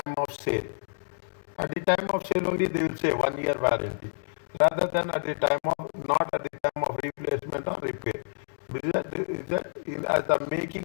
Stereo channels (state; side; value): silent; right; digital silence